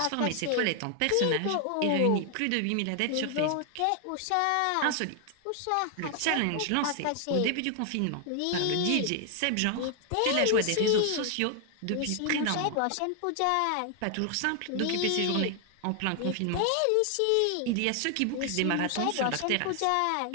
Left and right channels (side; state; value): both; different; correlation 0.00